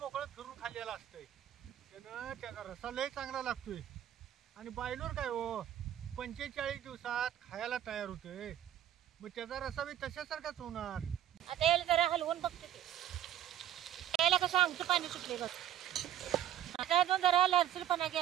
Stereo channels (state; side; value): quieter; left; 11.4 dB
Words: मोकळं फिरून खाल्लेला असतंय. त्यानं त्याचा रसा लय चांगला लागतोय. आणि बायलोर काय हो 45 दिवसात खायला तयार होते. मग त्याचा रसा बी तशासारखाच होणार. आता याला जरा हलवून बघतो की याला कसं आमचं पाणी सुटले बघ. आता अजून जरा लालसरपणा